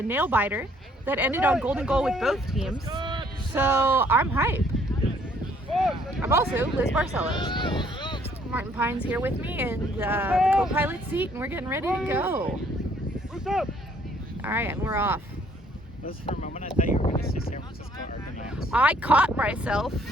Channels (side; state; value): both; normal; correlation 0.63